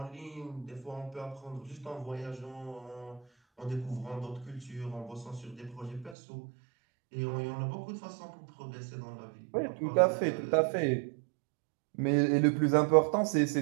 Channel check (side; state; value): left; drops out; at 6.2 s